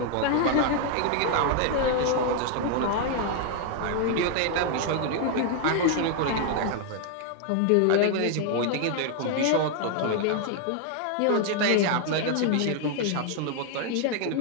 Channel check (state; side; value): different; both; correlation 0.00